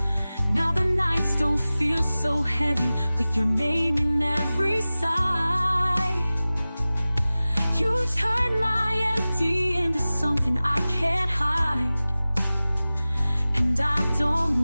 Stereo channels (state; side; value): inverted; both; correlation -0.97